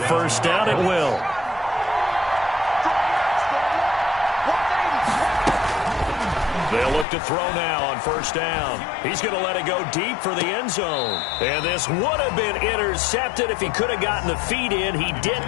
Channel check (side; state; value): right; drops out; at 7.1 s